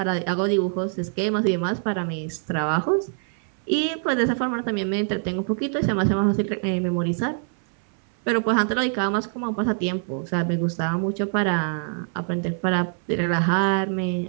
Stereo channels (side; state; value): left; silent; 62 dB below the other